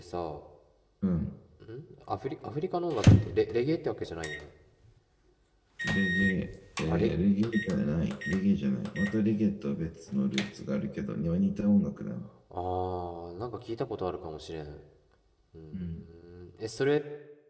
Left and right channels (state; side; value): identical; both; correlation 1.00